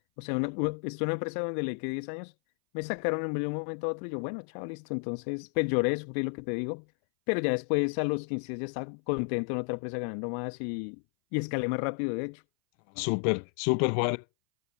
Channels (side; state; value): right; silent; 57 dB below the other